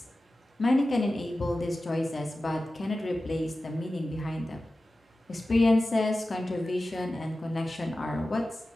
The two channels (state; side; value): normal; both; correlation 0.95